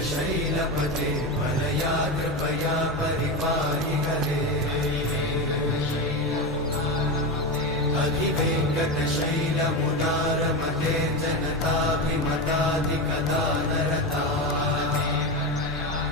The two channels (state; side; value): normal; both; correlation 0.17